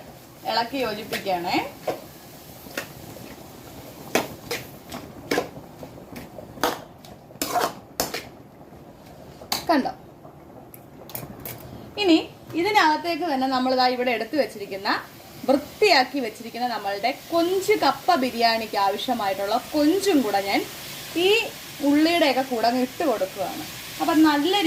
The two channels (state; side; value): identical; both; correlation 1.00